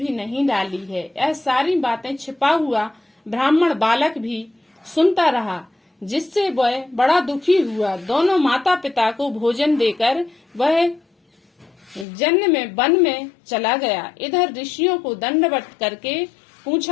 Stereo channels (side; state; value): right; drops out; at 12.1 s